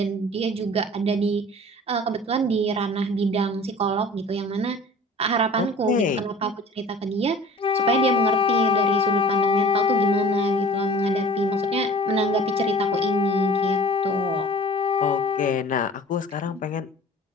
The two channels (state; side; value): normal; both; correlation 0.44